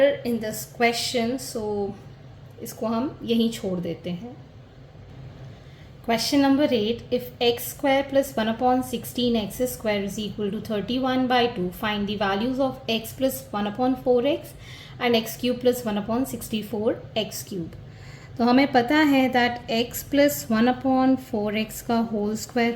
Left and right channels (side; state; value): both; identical; correlation 1.00